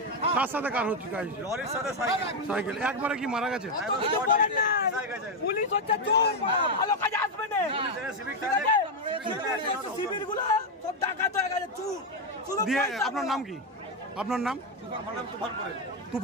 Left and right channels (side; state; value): both; normal; correlation 0.05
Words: কার সাথে কার হচ্ছে? সাইকেল। একবারে কি মারা গেছে? পুলিশ হচ্ছে চোর, ভালো কাজে আসবে না। শিবিরগুলো সব ডাকাত হয়ে গেছে, চোর। দিয়ে আপনার নাম কি? আপনার নাম?